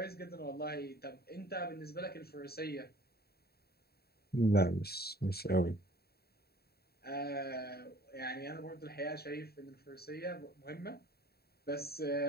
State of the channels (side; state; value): right; late; 0.46 ms